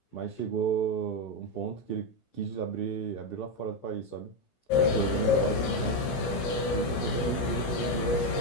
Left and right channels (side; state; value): right; late; 17 ms